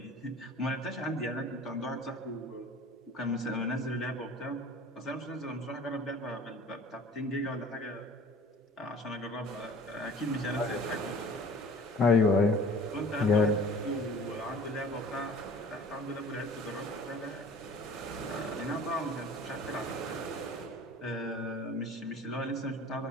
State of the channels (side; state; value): both; normal; correlation 0.46